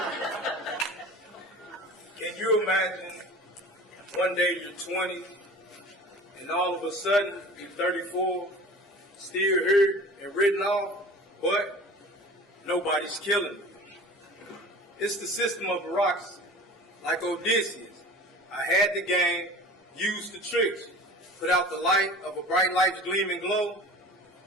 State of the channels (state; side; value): normal; both; correlation 0.40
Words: Can you imagine one day you're 20 and all of a sudden you're 34, still here and written off, but nobody's killing you? It's the system of bureaucracy. Like Odysseus, I had the game, used the tricks, put out the light of a bright light's gleaming glow.